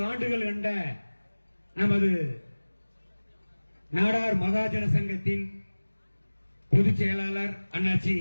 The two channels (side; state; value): both; inverted; correlation -1.00